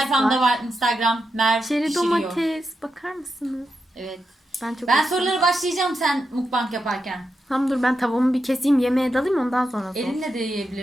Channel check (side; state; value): both; normal; correlation 0.87